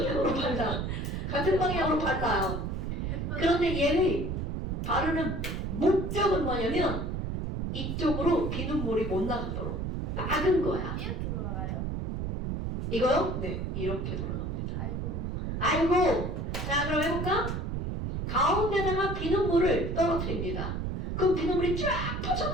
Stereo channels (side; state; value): right; noise; rumble, 2 dB below the sound